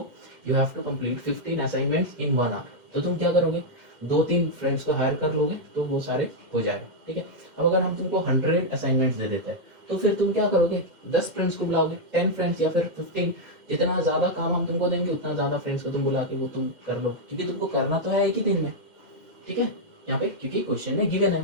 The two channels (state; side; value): late; left; 2.1 ms